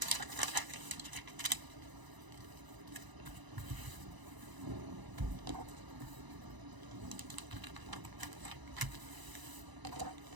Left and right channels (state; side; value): late; left; 1.0 ms